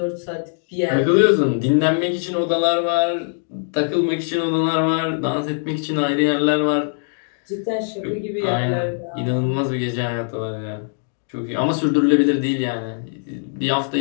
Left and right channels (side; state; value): right; silent; digital silence